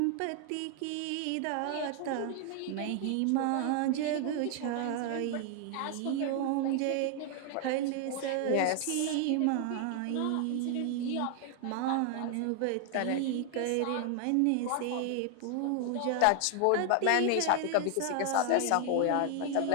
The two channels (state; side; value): different; both; correlation 0.00